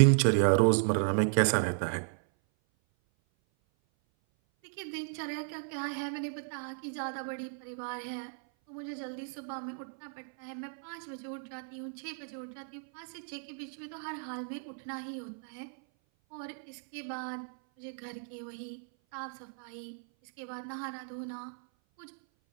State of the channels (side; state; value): left; silent; 55 dB below the other